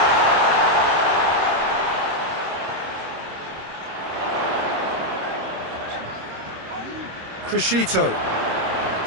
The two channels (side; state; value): left; late; 26 ms